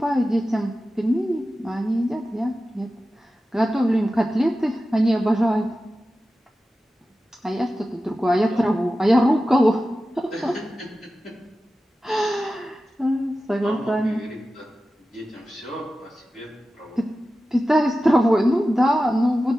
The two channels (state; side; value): normal; both; correlation 0.94